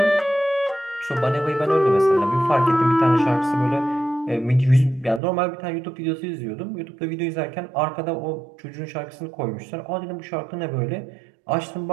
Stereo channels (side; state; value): left; drops out; at 5.2 s